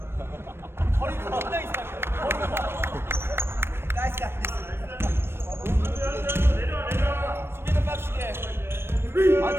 허리가 겁나 이상해. 나이스. 수비는 빡시게.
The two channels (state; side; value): late; left; 0.12 ms